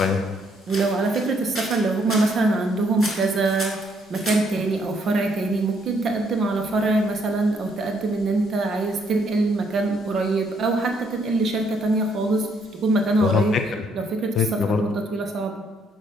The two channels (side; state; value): both; normal; correlation 0.70